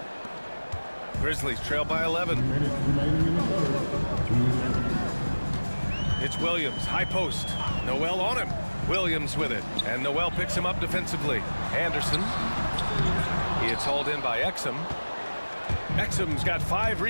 Grizzlies trail by 11. It's Williams, high post. Noel on him. Williams with it. And Noel picks him up defensively. Anderson. He is hauled in by Exum. Exum's got 5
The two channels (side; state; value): both; inverted; correlation -1.00